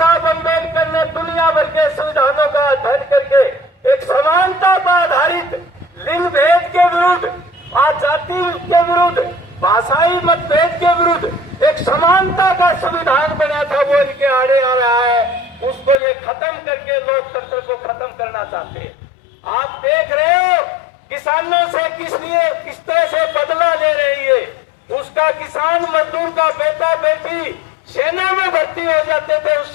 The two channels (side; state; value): right; drops out; at 16.0 s